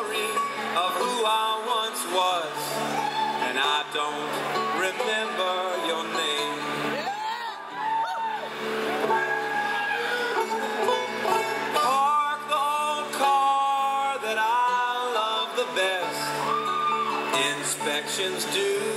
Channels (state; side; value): identical; both; correlation 1.00